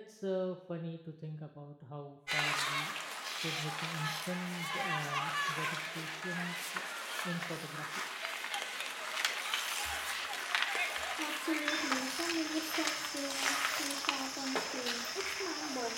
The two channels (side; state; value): both; identical; correlation 1.00